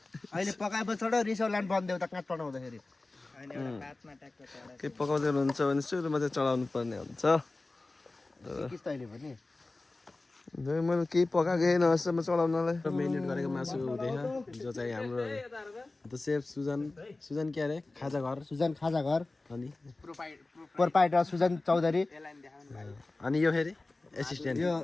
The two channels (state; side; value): quieter; right; 3.2 dB